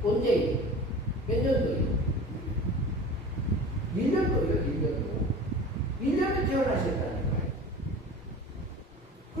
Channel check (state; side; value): normal; both; correlation 0.38